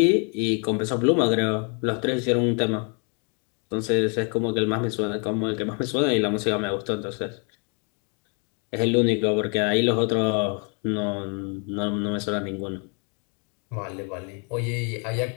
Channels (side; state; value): right; quieter; 37.3 dB